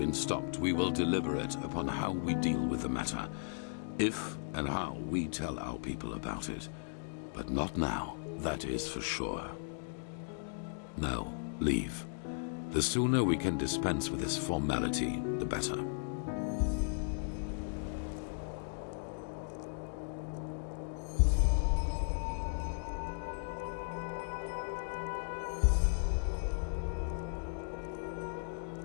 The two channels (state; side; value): silent; right; digital silence